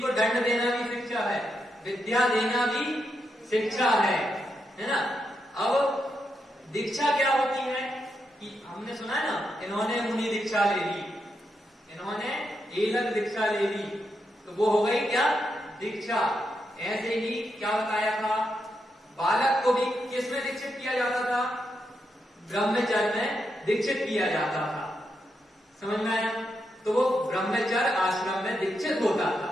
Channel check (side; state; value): both; normal; correlation 0.83